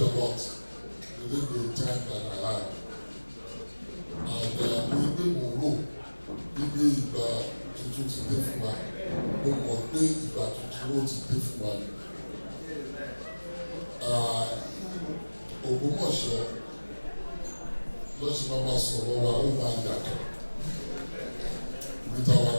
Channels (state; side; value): inverted; both; correlation -1.00